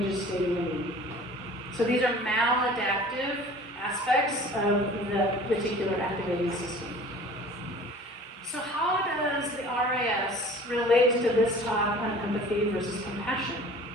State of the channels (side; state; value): both; normal; correlation 0.45